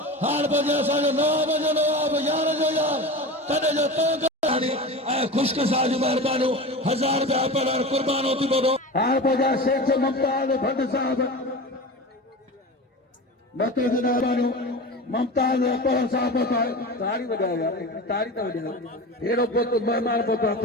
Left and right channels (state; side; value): normal; both; correlation 0.30